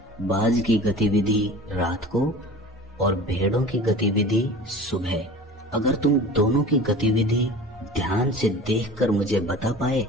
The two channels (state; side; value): normal; both; correlation 0.39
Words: बाज की गतिविधि रात को और भेड़ों की गतिविधि सुबह। अगर तुम दोनों की गतिविधि ध्यान से देखकर मुझे बता पाए